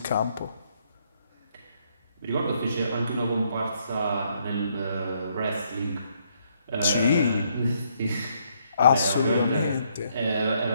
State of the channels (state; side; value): inverted; both; correlation -0.72